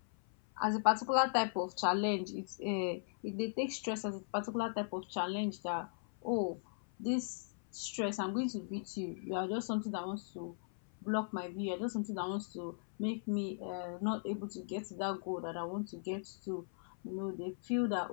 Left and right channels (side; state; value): right; silent; 52 dB below the other